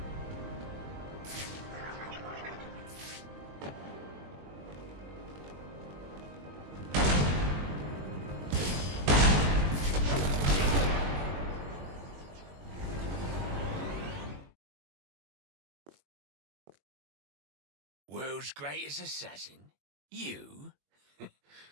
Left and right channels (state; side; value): late; left; 21 ms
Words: World's greatest assassin? You?